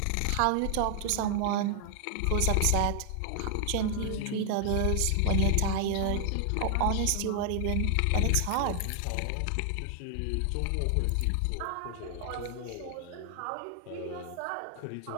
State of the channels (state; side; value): different; both; correlation 0.00